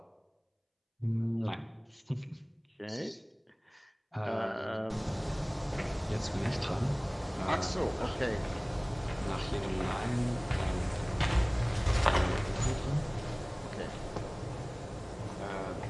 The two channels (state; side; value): identical; both; correlation 1.00